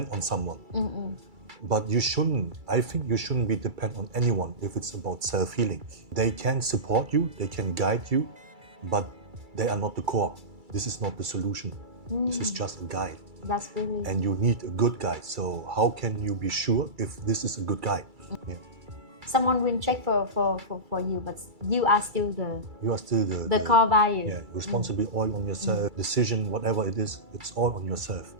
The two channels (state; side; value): late; left; 2.3 ms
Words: on someone. But I think you shouldn't be dependent on anyone if it's about self-healing. They can support you, they can guide you, but they are not the core. This is not the solution. This is just a guide. That's really... And you need a good guide. So how can you be sure if this is a good guide? Yeah. Someone will check for you, but you are still the core value. Yeah, responsibility all on yourself. Decision, whatever it is, it's all on yourself.